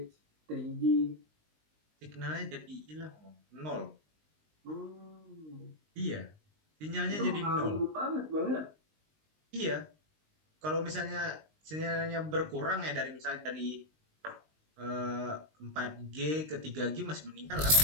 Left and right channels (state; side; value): late; left; 19 ms